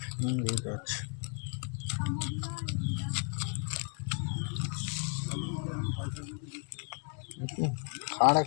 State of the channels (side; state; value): right; quieter; 39.5 dB